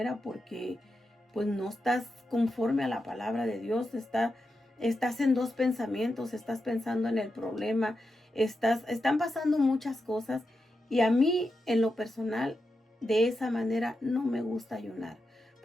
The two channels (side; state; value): both; normal; correlation 0.88